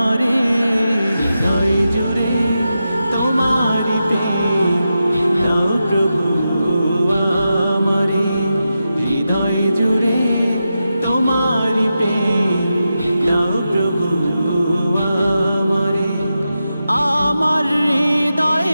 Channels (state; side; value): inverted; both; correlation -0.90